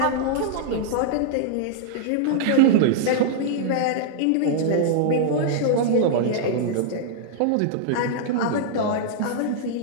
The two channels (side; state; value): both; different; correlation -0.01